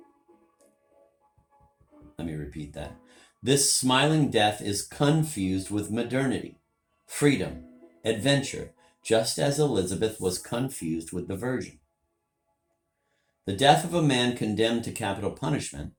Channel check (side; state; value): both; identical; correlation 1.00